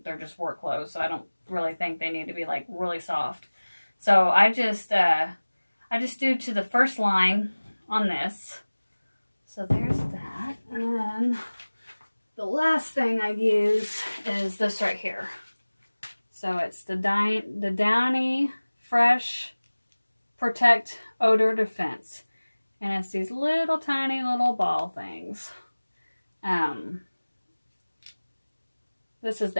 they're just work clothes, so I don't really think they need to be, like, really soft. So I just do to the first line on this. So there's that. And then the last thing I use is this right here. So it's the Downy Fresh Protect Odor Defense. And it's these little tiny little ball things. This is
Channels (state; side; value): inverted; both; correlation -1.00